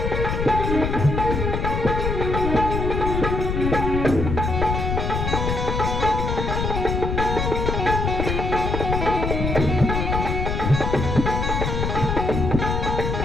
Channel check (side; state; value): left; noise; rumble, 1 dB below the sound